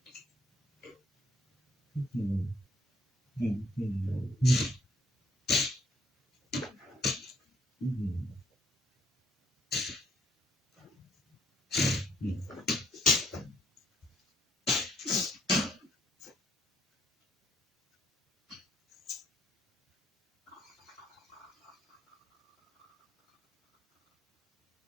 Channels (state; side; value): normal; both; correlation 0.68